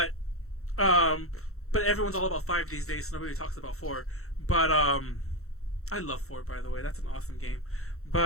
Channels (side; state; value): right; late; 0.63 ms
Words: everyone's all about 5 these days, so nobody talks about 4. But I love 4, by the way. That's an awesome game.